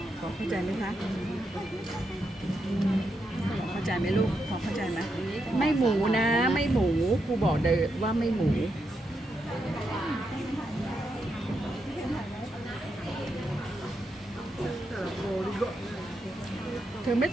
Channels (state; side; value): normal; both; correlation 0.83